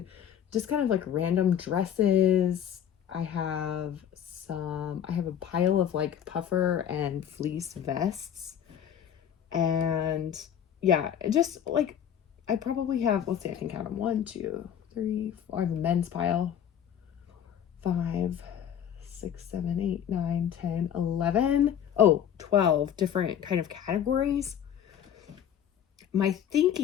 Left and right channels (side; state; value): right; quieter; 9.3 dB